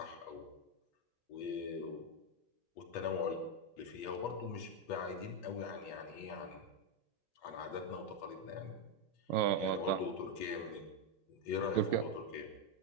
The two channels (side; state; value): right; late; 8.2 ms